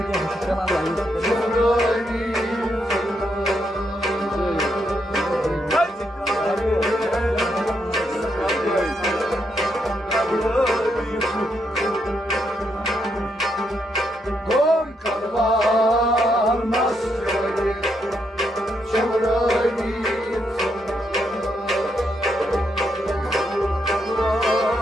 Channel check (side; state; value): both; normal; correlation 0.79